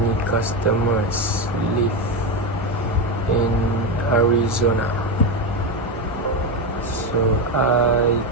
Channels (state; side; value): normal; both; correlation 0.13